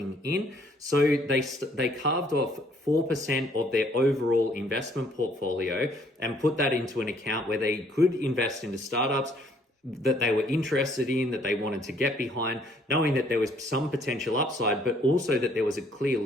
in. So they carved off 4% of their overall investment portfolio and put that into an account where they could invest into startups that they were interested in, that they wanted to get behind, knowing that there was some potential upside, but also that there was a clear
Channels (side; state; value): both; normal; correlation 0.64